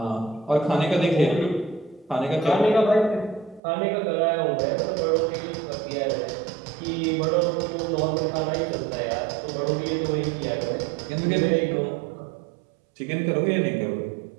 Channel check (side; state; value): left; drops out; at 3.6 s